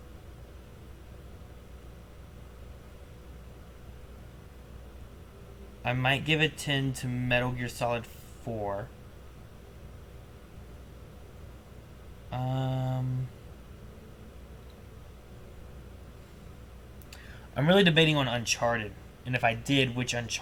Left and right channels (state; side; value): identical; both; correlation 1.00